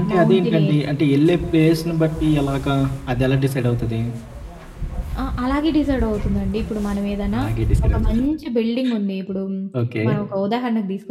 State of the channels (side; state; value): both; identical; correlation 1.00